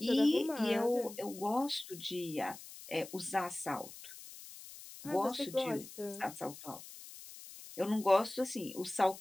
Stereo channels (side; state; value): left; noise; hiss, 15 dB below the sound